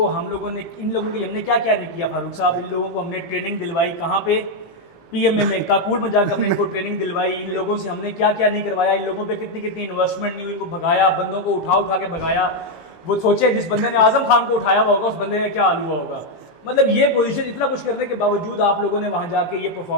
हम लोगों ने, इन लोगों के लिए हमने क्या क्या नहीं किया फारूक साहब। इन लोगों को हमने ट्रेनिंग दिलवाई, कहाँ पे, पीएमए में, काकुल में जाकर हमने इनको ट्रेनिंग दिलवाई। इन लोगों से हमने क्या क्या नहीं करवाया, इन लोगों पे कितनी कितनी इन्वेस्टमेंट नहीं हुई, इनको भगाया, बंदों को उठा उठा के भगाया। वो सोचे जिस बंदे ने आजम खान को उठाया हुआ होगा उस बंदे का क्या हाल हुआ होगा। मतलब ये पोजीशन, इतना कुछ करने के बावजूद आप लोगों ने वहां जाके ये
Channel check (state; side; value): late; right; 18 ms